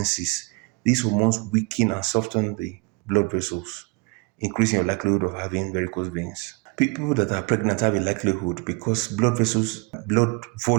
These hormones weaken and soften the blood vessels, increasing your likelihood of having varicose veins. People that are pregnant have a likelihood because blood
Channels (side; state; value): left; quieter; 27.7 dB